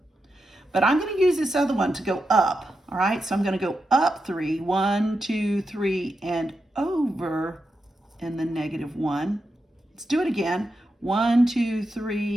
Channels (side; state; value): both; normal; correlation 0.87